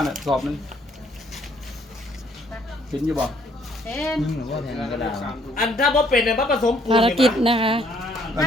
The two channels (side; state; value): both; normal; correlation 0.65